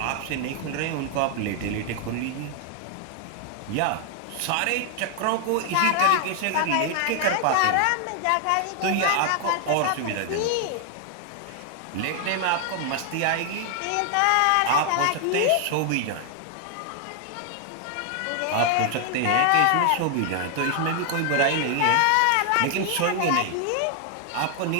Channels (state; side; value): different; both; correlation 0.00